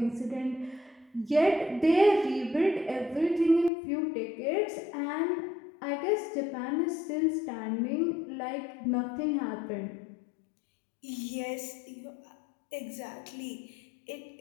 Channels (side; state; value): right; drops out; at 3.7 s